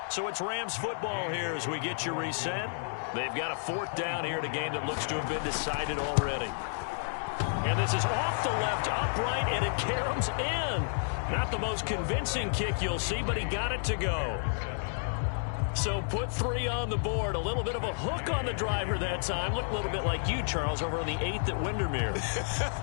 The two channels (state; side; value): silent; right; 57 dB below the other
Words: So it's Rams football here as we get you reset. They've got a 4th down here in a game that looks to have been decided already. And this is off the left upright, and it caroms in. Not the most convincing kick you'll see, but he got it to go. So put 3 on the board. A little bit of a hook on the driver that time. Looked a little bit like you, Charles, over on the 8th at Windermere.